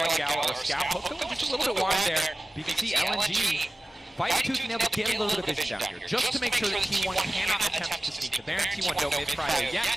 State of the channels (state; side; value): normal; both; correlation 0.97